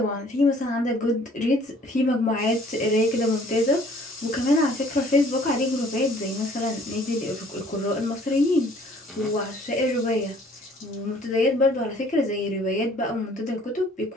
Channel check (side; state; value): both; normal; correlation 0.56